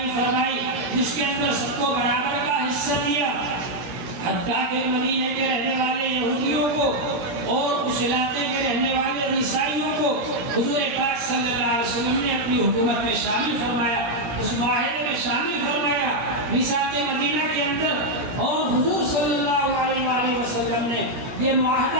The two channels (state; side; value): late; left; 17 ms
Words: فرمائی، جس کے اندر سب کو برابر کا حصہ دیا، حتیٰ کہ مدینے کے رہنے والے یہودیوں کو اور اس علاقے کے رہنے والے عیسائیوں کو حضور پاک صلی اللہ علیہ وسلم نے اپنی حکومت میں شامل فرمایا، اس معاہدے میں شامل فرمایا میثاق مدینہ کے اندر۔ اور حضور صلی اللہ علیہ وآلہ وسلم نے یہ